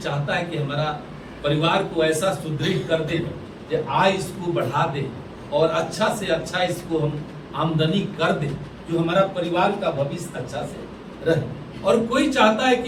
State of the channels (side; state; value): both; identical; correlation 1.00